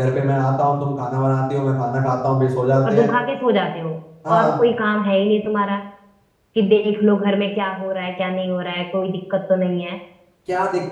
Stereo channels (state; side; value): identical; both; correlation 1.00